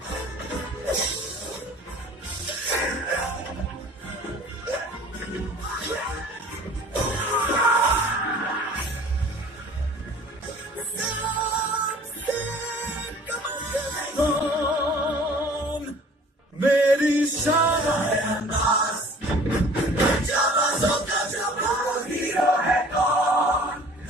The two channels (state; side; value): normal; both; correlation 0.49